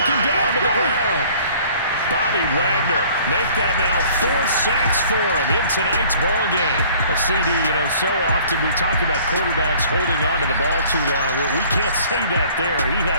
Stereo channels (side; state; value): both; inverted; correlation -0.53